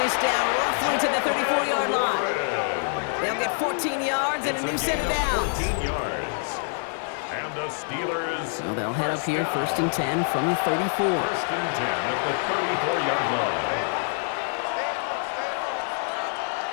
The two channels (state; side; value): silent; right; 61 dB below the other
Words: down roughly to the 34-yard line. They'll get 14 yards and a new set of downs. 14 yards. And the Steelers. So they'll head up here 1st and 10 from the 34. 1st and 10 at the 34-yard line.